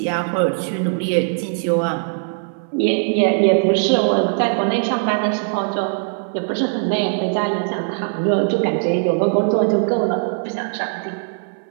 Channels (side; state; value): left; silent; 59 dB below the other